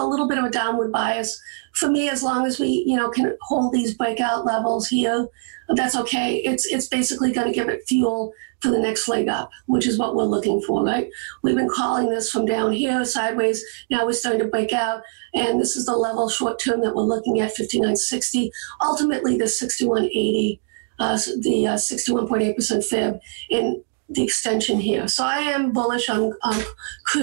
little bit of a downward bias. For me, as long as we, can hold these breakout levels here, that's okay. It's basically going to give it fuel for the next leg up, which is what we're looking for, right? We've been calling this from down here, sideways. Now we're starting to break out, and this is the level short term that we're looking at, 59.60. Ultimately, the 61.80, the 61.8% fib in the extension here. So I am bullish on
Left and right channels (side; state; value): left; silent; digital silence